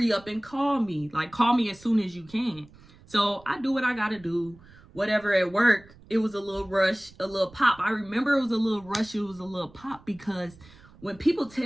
up and call me. Like, call me as soon as you can. So I do what I got to do. Whatever at work, it was a little rush, a little pop. I remember it was a little rush. It was a little pop because when people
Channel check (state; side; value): noise; right; rumble, 24 dB below the sound